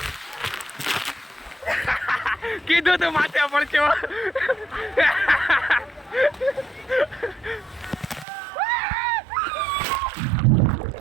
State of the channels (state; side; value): drops out; left; at 8.2 s